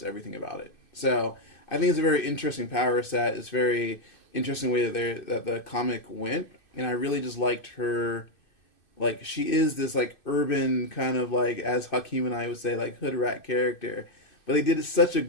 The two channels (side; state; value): right; late; 2.5 ms